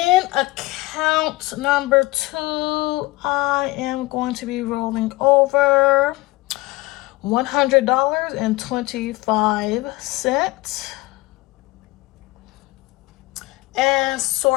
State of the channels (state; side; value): quieter; right; 20.7 dB